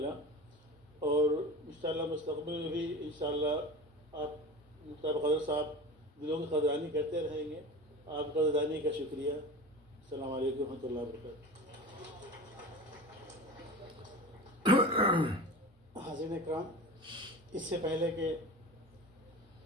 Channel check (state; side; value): normal; both; correlation 0.32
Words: और इंशाअल्लाह मुस्तक़बिल में भी इंशाअल्लाह आप मुख्तार कदर साहब दिलों की कदरानी करते रहेंगे। आपकी कदरानी का शुक्रिया। अस्सलाम वालेकुम रहमतुल्लाहि व बरकातहू। हाज़िरीन इकराम, इससे पहले कि